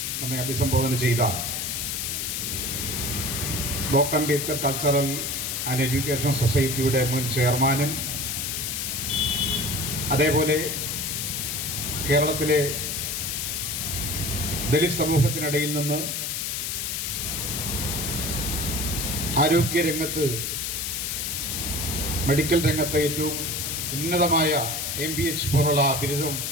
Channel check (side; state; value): left; noise; hiss, 2 dB below the sound